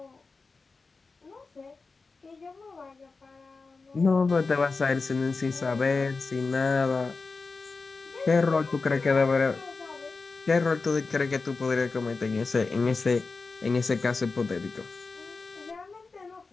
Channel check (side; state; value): right; quieter; 4.1 dB